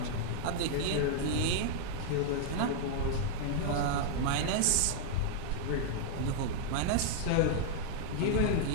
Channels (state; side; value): different; both; correlation -0.01